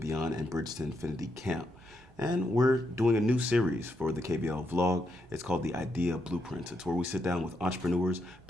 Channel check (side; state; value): both; normal; correlation 0.80